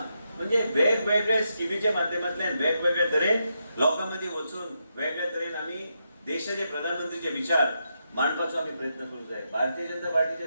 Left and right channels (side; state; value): both; inverted; correlation -0.83